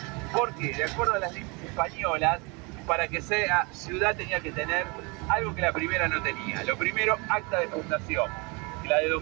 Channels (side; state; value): left; quieter; 29.2 dB